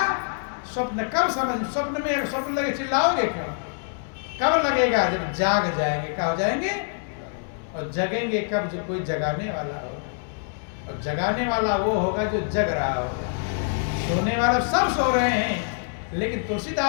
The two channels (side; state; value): right; silent; digital silence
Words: स्वप्न कब समझ? स्वप्न में स्वप्न लगे चिल्लाओगे क्यों? कब लगेगा? जब जाग जाएंगे। क्या हो जाएंगे? और जगेंगे कब? जब कोई जगाने वाला होगा। और जगाने वाला वो होगा जो जग रहा होगा। सोने वाले सब सो रहे हैं। लेकिन